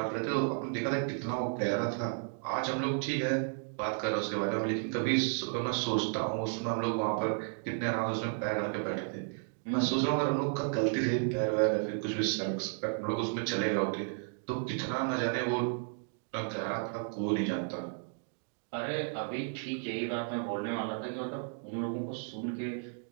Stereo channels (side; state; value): left; silent; 56 dB below the other